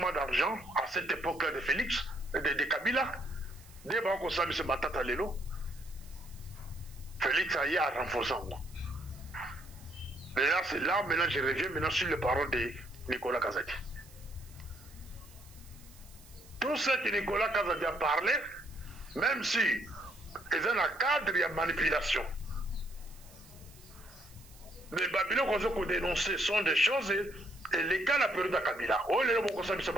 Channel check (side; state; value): right; noise; hiss, 23 dB below the sound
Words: d'argent à cette époque-là de Félix, de Kabila, dès qu'on s'est mis ce Matata Lelo, Félix a renforcé en moi. Maintenant, c'est là, maintenant je reviens maintenant sur les paroles de Nicolas Kazadi. Tout ce que Nicolas Kazadi a parlé, même si ils ont un cadre de manipulation. Les Babylons qu'on a dénoncé sont des choses et les cas de la période de Kabila. Oh, les gens qui